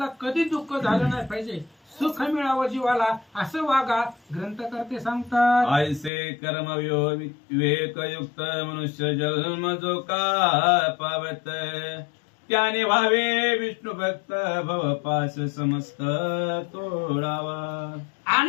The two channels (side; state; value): right; drops out; at 6.1 s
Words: कधी दुःख झालं नाही पाहिजे. सुख मिळावं जीवाला असं वागा ग्रंथकर्ते सांगतात. ऐसे कर्म विवेकयुक्त मनुष्य जन्म जो का पावत त्याने व्हावे विष्णू भक्त भवपास समस्त तोडावा.